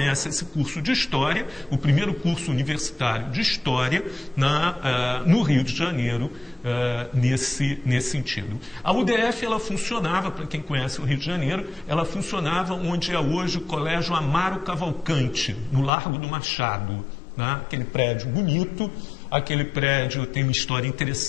esse curso de História, o primeiro curso universitário de História no Rio de Janeiro, nesse sentido. A UDF ela funcionava, para quem conhece o Rio de Janeiro, ela funcionava onde é hoje o Colégio Amaro Cavalcante, no Largo do Machado. Aquele prédio bonito, aquele prédio tem uma história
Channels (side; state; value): right; drops out; at 15.9 s